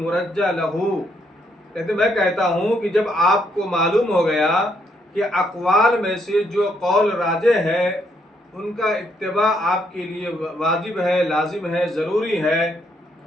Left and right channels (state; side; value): normal; both; correlation 0.73